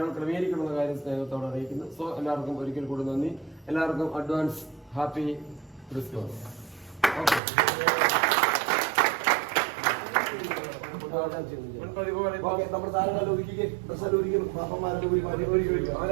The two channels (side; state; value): left; drops out; at 7.4 s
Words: ക്രമീകരിക്കണമെന്ന കാര്യം സ്നേഹത്തോടെ അറിയിക്കുന്നു. സോ എല്ലാവർക്കും ഒരിക്കൽ കൂടി നന്ദി. എല്ലാവർക്കും അഡ്വാൻസ് ഹാപ്പി ക്രിസ്മസ്. നമ്മുടെ താരങ്ങളെ ഒരുക്കി